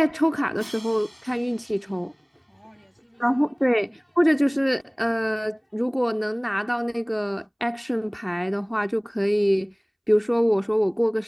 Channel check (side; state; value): both; identical; correlation 1.00